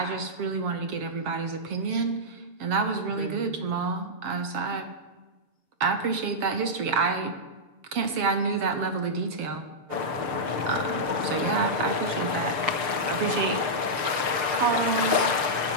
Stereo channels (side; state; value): left; late; 6.7 ms